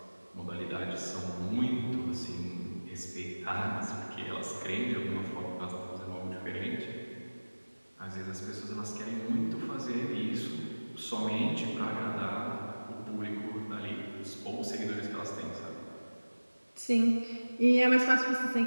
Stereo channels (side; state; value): both; inverted; correlation -1.00